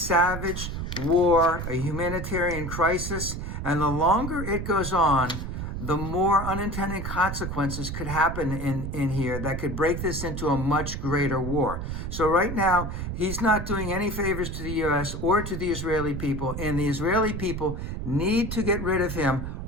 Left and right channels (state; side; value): noise; right; rumble, 5 dB below the sound